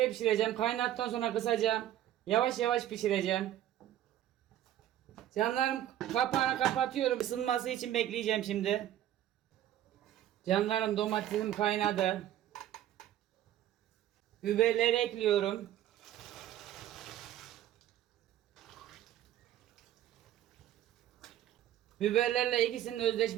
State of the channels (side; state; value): left; quieter; 12.2 dB